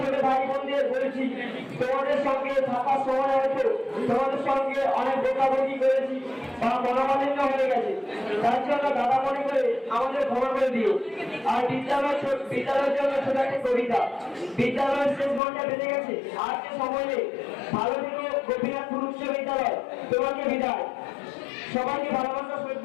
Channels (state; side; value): drops out; right; at 15.4 s